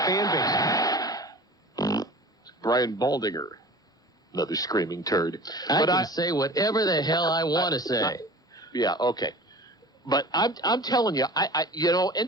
fan base. Brian Baldinger. Another screaming turd. I can say whatever the hell I want to say. Yeah, okay. But I'm telling you,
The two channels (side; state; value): both; normal; correlation 0.40